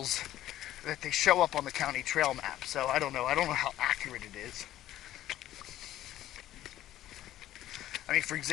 that they show up on the county trail map. So I don't know how accurate it is. I mean, for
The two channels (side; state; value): right; quieter; 13.4 dB